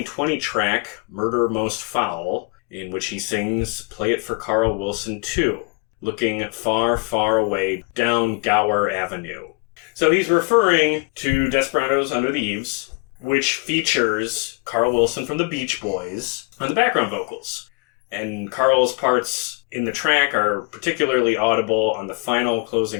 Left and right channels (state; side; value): quieter; right; 30.9 dB